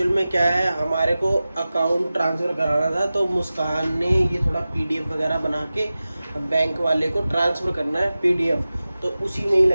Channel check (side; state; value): both; inverted; correlation -0.95